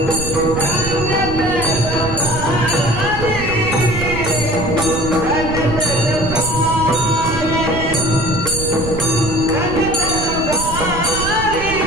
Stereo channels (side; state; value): right; noise; rumble, 7 dB below the sound